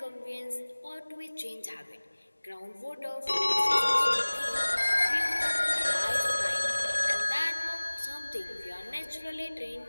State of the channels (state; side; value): inverted; both; correlation -1.00